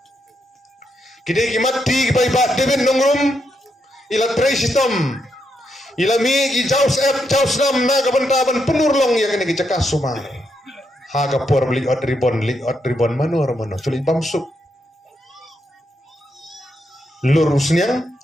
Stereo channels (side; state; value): both; normal; correlation 0.80